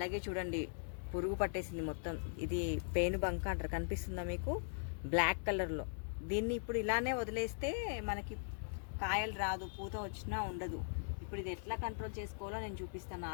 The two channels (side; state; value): right; silent; 51 dB below the other